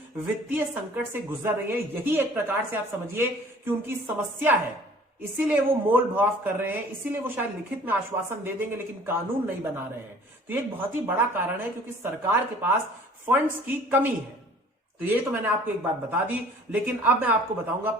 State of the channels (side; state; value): both; normal; correlation 0.51